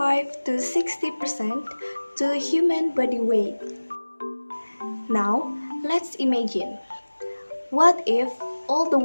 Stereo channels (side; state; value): both; inverted; correlation -1.00